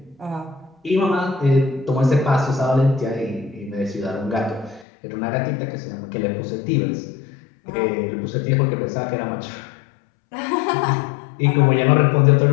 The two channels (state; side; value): drops out; right; at 4.9 s